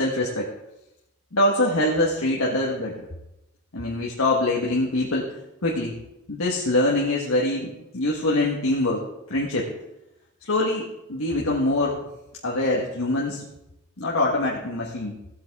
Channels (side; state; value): both; normal; correlation 0.02